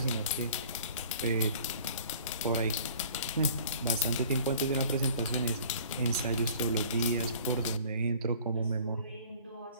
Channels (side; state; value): both; inverted; correlation -0.49